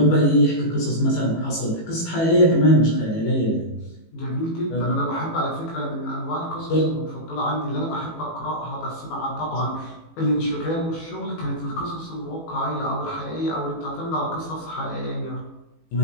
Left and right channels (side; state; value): right; late; 18 ms